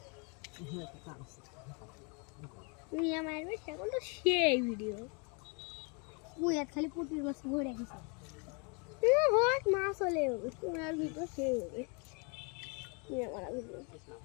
খালি পুটির মাছ ভরে গেছে মাছ হলে তোমার ভিতর সে হবে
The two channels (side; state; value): right; quieter; 33.9 dB